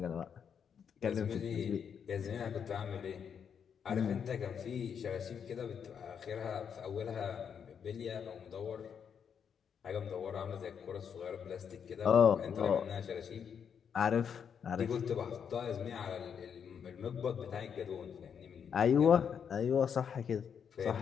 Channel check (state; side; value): quieter; right; 7.4 dB